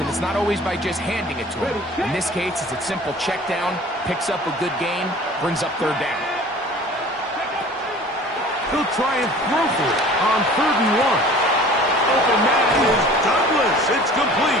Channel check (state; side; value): normal; both; correlation 0.45